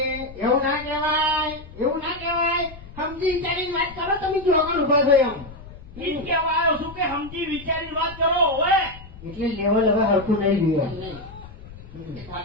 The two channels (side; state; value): left; noise; rumble, 17 dB below the sound